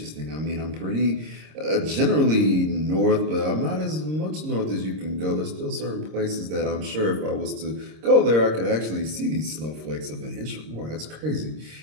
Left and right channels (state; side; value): late; left; 26 ms